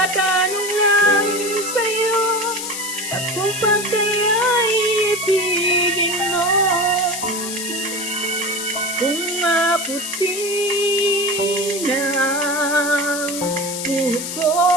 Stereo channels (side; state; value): left; noise; hiss, 6 dB below the sound